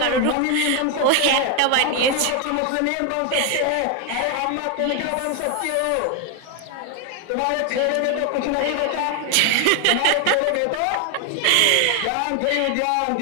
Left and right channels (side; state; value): both; different; correlation 0.01